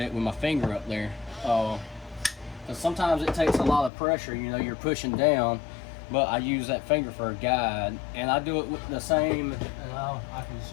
with my finger up there. Because sometimes it takes a lot of pressure, you know, you're pushing down, but I use that finger for a guide. And I do it with the same, and I can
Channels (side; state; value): right; drops out; at 3.9 s